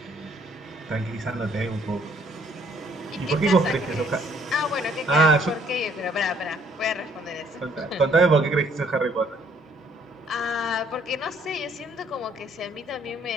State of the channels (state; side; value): normal; both; correlation 0.64